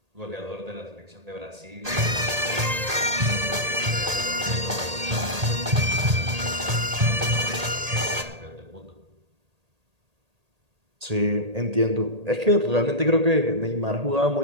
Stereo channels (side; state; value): left; late; 1.8 ms